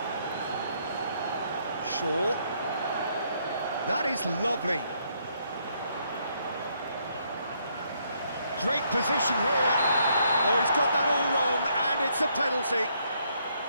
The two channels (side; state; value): both; inverted; correlation -0.72